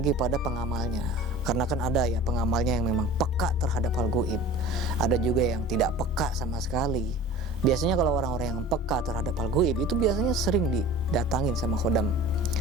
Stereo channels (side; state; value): both; normal; correlation 0.41